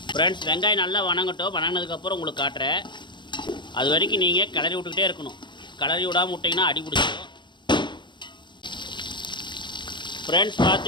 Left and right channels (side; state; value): right; late; 0.22 ms